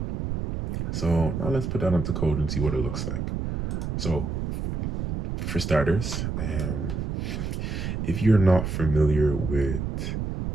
So now let's put that into code and see what it looks like. So for starters, if you're not familiar with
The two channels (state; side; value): noise; right; rumble, 3 dB below the sound